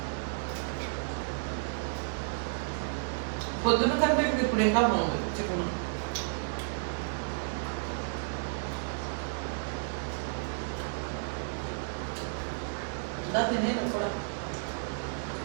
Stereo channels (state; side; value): silent; left; digital silence